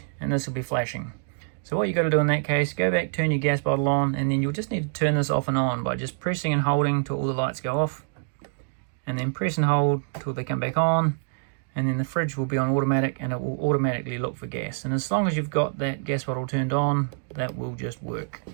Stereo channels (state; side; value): silent; left; digital silence